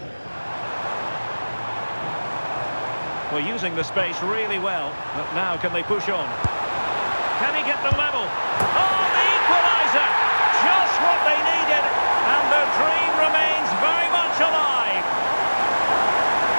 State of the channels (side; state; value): both; inverted; correlation -1.00